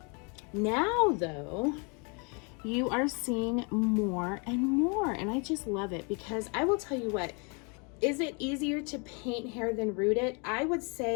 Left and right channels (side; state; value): right; quieter; 34.0 dB